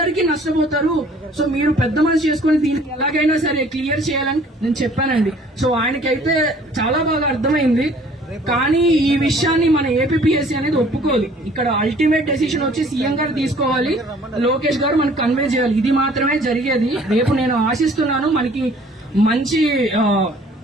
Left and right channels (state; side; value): normal; both; correlation 0.55